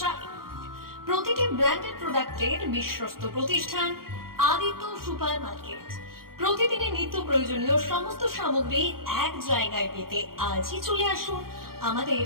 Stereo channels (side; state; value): left; late; 0.93 ms